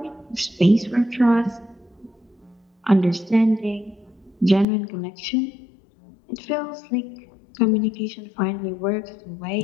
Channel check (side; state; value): right; drops out; at 4.7 s